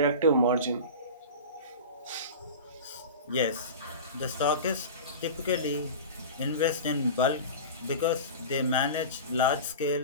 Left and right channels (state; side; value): inverted; both; correlation -0.31